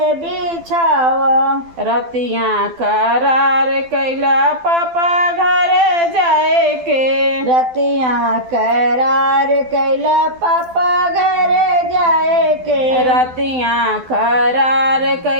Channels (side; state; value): left; late; 12 ms